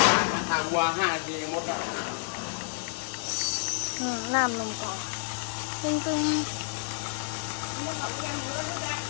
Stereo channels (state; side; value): silent; right; digital silence